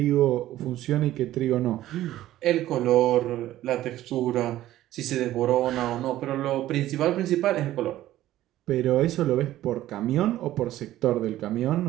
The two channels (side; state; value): left; quieter; 14.2 dB